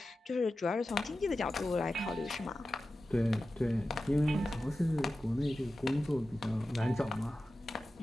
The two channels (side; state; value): both; normal; correlation 0.94